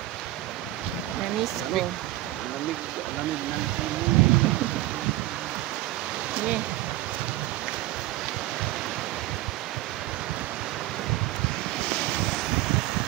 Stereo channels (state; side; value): quieter; left; 17.0 dB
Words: Na-miss ko. Lamig ng simoy. Yeah.